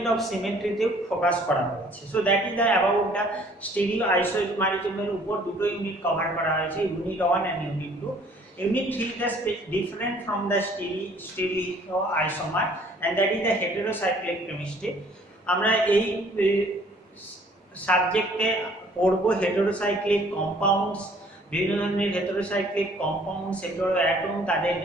of symmetry তে ফোকাস করা হয়েছে। So that is the about the stereo আইসোমারিজমের উপর দুটো ইউনিট কভার করা হয়েছে, unit 1 and unit 2। Unit 3 is different from the stereoisomer and that is the heterocyclic chemistry. আমরা এই সাবজেক্টে পড়ব হেটেরোসাইক্লিক কম্পাউন্ডস, বিভিন্ন ধরনের হেটেরোসাইক্লিক কম্পাউন্ডস, হেটেরো অ্যাটম, তাদের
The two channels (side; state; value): both; normal; correlation 0.57